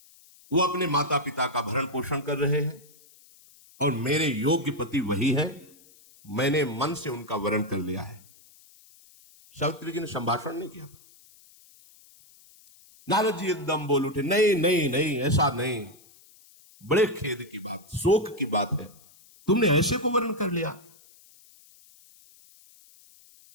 वो अपने माता पिता का भरण पोषण कर रहे हैं, और मेरे योग्य पति वही है, मैंने मन से उनका वरण कर लिया है। सावित्री जी ने संभाषण नहीं किया था। नारद जी एकदम बोल उठे, नहीं नहीं नहीं, ऐसा नहीं, बड़े खेद की बात, शोक की बात है, तुमने ऐसे को वर्ण कर लिया।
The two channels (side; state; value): left; noise; hiss, 26 dB below the sound